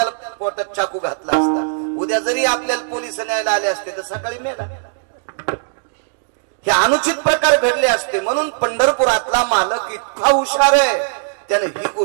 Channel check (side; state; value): left; silent; digital silence